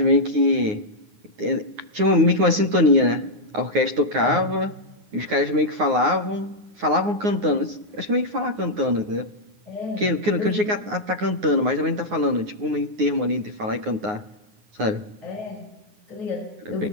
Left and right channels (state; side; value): late; left; 9.6 ms